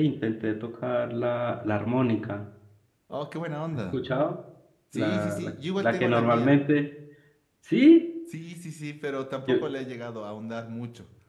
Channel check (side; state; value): both; identical; correlation 1.00